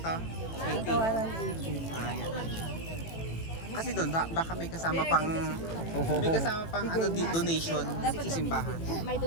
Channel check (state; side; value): late; right; 18 ms